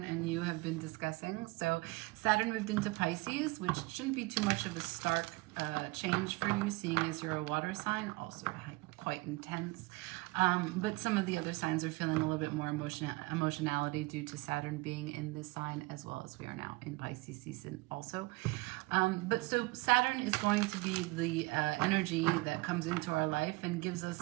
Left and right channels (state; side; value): quieter; left; 23.5 dB